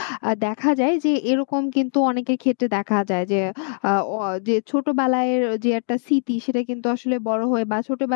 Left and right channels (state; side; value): silent; right; digital silence